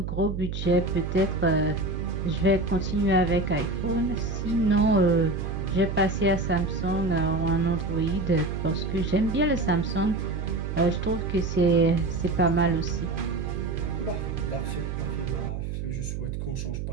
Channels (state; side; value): noise; right; hum, 4 dB below the sound